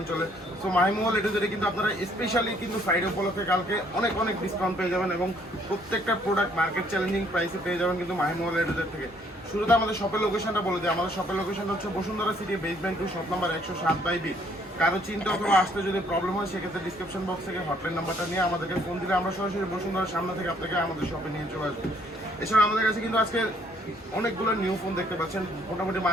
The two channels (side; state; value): both; normal; correlation 0.65